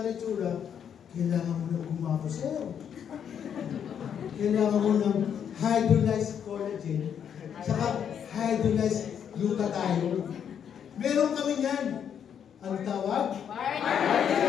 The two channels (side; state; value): right; quieter; 8.4 dB